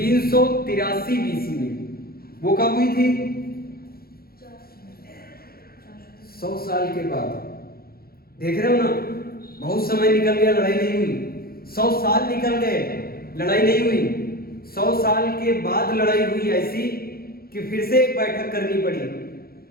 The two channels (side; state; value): right; late; 0.44 ms